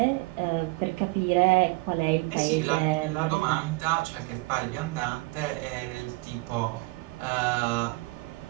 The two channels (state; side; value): quieter; left; 25.3 dB